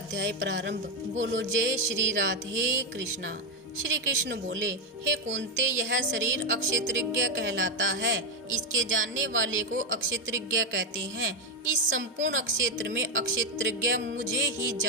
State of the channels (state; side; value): normal; both; correlation 0.07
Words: प्रारंभ। बोलो जय श्री राधे कृष्णा। श्री कृष्ण बोले, हे कुंती, यह शरीर अक्षेत्रज्ञ कहलाता है। इसके जानने वाले को अक्षेत्रज्ञ कहते हैं। इस संपूर्ण अक्षेत्र में अक्षेत्रज्ञ मुझे ही